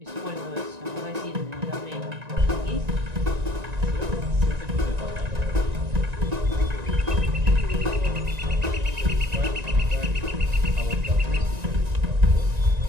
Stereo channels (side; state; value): left; late; 1.9 ms